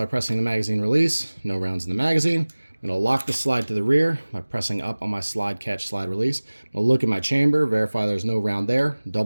pressing the magazine release. No rounds in the magazine. I'm going to lock the slide to the rear by pressing up on my slide catch slide release. I'm going to look at my chamber, verify there's no round there.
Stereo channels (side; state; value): both; inverted; correlation -1.00